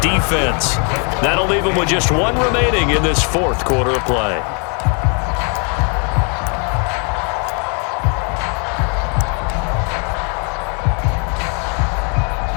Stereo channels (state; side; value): quieter; right; 37.7 dB